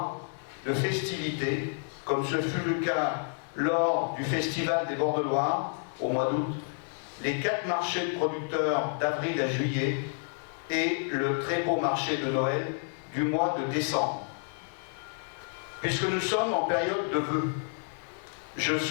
de festivité, comme ce fut le cas lors du Festival des Bords de Loire au mois d'août, les 4 marchés de producteurs d'avril à juillet et le très beau marché de Noël du mois de décembre. Puisque nous sommes en période de vœux, je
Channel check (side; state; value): right; silent; 58 dB below the other